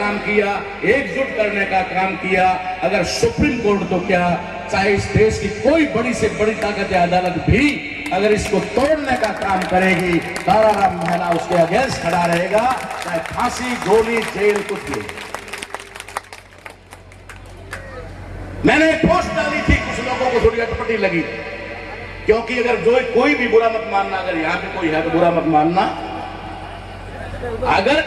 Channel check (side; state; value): both; identical; correlation 1.00